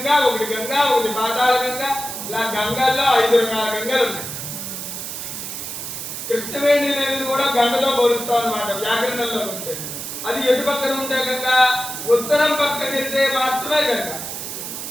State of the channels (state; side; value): noise; right; hiss, 7 dB below the sound